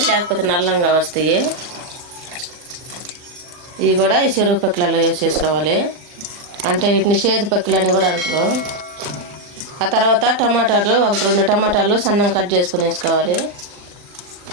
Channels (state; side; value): late; left; 40 ms